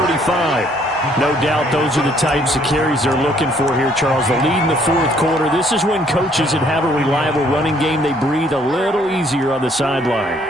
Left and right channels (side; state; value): both; normal; correlation 0.64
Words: No doubt those are the types of carries they're looking for here, Charles. The lead in the fourth quarter. This is when coaches that have a reliable running game, they breathe a little easier on the